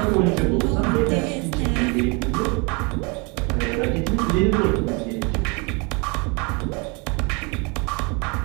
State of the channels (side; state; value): left; quieter; 30.8 dB